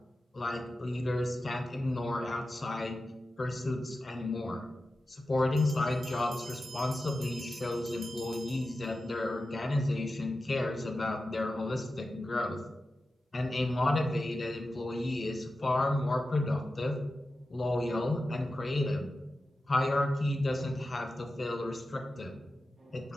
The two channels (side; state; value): both; normal; correlation 0.93